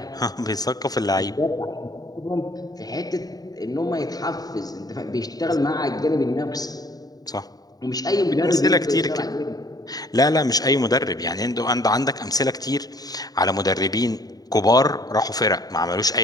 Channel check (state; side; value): late; right; 0.18 ms